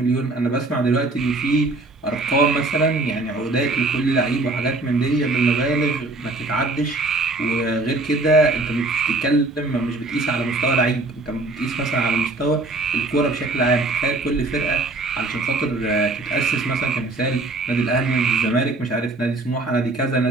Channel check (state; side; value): quieter; left; 3.1 dB